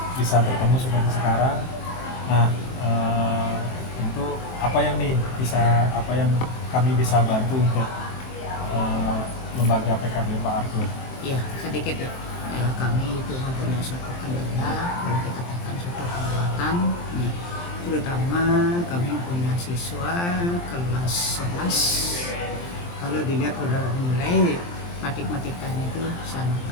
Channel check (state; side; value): late; right; 23 ms